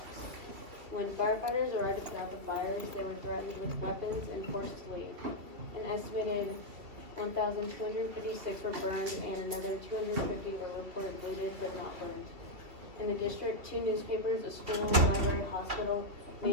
When firefighters arrived to put out the fires, they were threatened with weapons and forced to leave. An estimated 1,256 were burned and another 250 were reported looted but not burned. In the district, 2 newspapers, a school, library, hospital,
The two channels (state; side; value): late; left; 2.8 ms